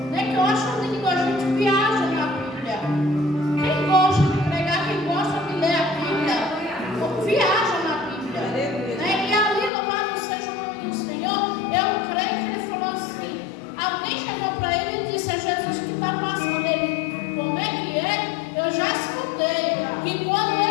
né? Que eu acho lindo, a gente viaja na Bíblia. Quem gosta de pregar, quem gosta de ler a Bíblia, viaja na Bíblia, né? E ali, louvado seja o nome do Senhor, eu creio que ele falou assim, alguém chegou para ele e disse: é Jesus que está passando. Ele, como é que é? Eu já escutei que quando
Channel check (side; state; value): right; drops out; at 9.7 s